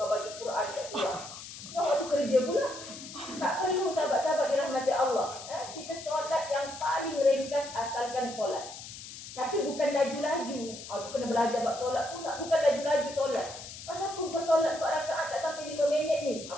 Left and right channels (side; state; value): left; noise; hiss, 12 dB below the sound